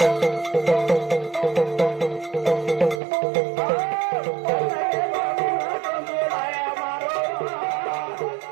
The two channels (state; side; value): drops out; left; at 3.0 s